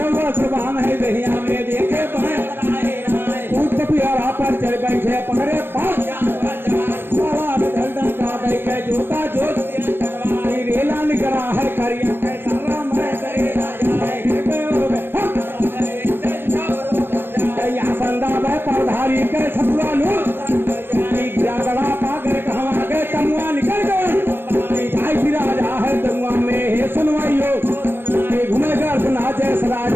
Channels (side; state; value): left; late; 0.099 ms